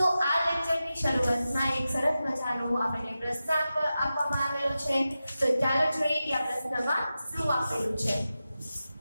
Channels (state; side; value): inverted; both; correlation -0.93